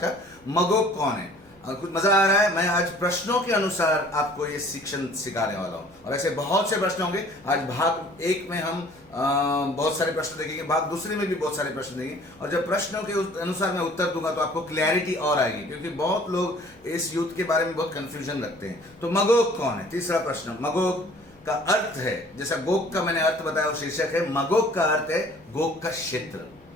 मगोग कौन है? कुछ मजा आ रहा है? मैं आज प्रश्नों के अनुसार आपको ये शिक्षण सिखाने वाला हूँ, और ऐसे बहुत से प्रश्न होंगे। आज भाग 1 में हम बहुत सारे प्रश्न देखेंगे, भाग दूसरे में भी बहुत सारे प्रश्न देंगे, और जब प्रश्नों के अनुसार मैं उत्तर दूंगा तो आपको क्लैरिटी और आएगी, क्योंकि बहुत लोग इस युद्ध के बारे में बहुत कंफ्यूजन रखते हैं। तो मगोग कौन है? तीसरा प्रश्न। मगोग का अर्थ है, जैसा गोग का मैंने अर्थ बताया, वो शीर्षक है। मगोग का अर्थ है गोग का क्षेत्र,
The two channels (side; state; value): left; noise; hum, 30 dB below the sound